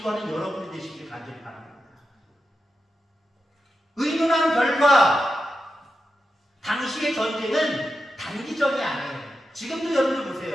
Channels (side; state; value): both; normal; correlation 0.89